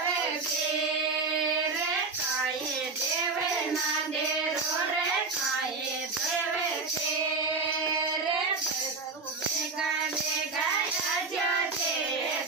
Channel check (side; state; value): left; quieter; 4.1 dB